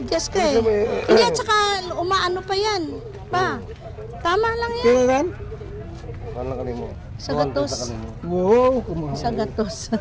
ka eh. Hindi at saka umaano pa yan. Pa. Tama lang yan. Kaya ran? ano ka mo? Sa gatos. Wow, kumahal. Sa gatos.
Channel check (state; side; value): identical; both; correlation 1.00